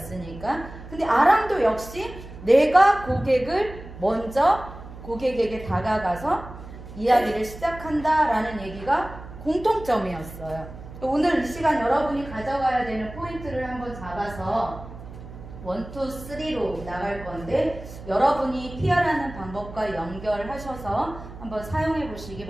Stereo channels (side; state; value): right; noise; hum, 14 dB below the sound